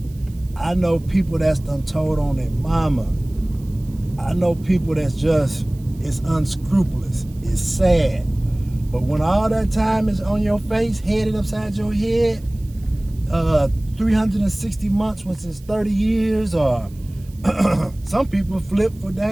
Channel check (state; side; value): noise; right; hiss, 27 dB below the sound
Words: I know people that's done told on their mama. I know people that's just, it's unscrupulous. It's sad. But when all that time is on your face, headed upside your head, 360 months, which is 30 years, or some people flip for